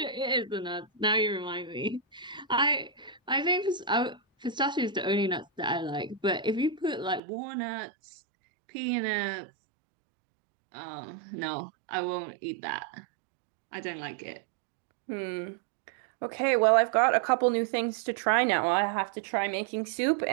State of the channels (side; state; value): left; drops out; at 7.2 s